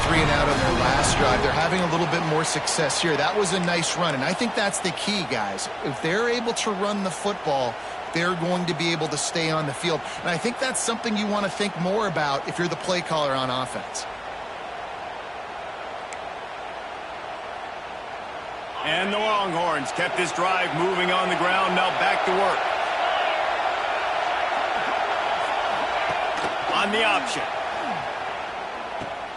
3 and out on their last drive. They're having a little bit more success here. That was a nice run, and I think that's the key, guys. If they're able to run the football, they're going to be able to stay on the field. And I think that's something you want to think more about if you're the play caller on offense. And the Longhorns kept this drive moving on the ground. Now back to work. On the option.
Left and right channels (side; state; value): both; identical; correlation 1.00